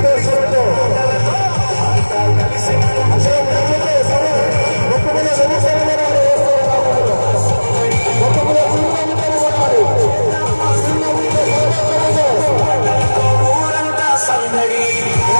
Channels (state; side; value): inverted; both; correlation -1.00